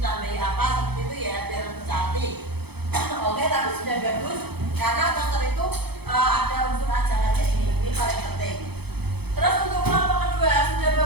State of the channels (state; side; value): late; left; 0.98 ms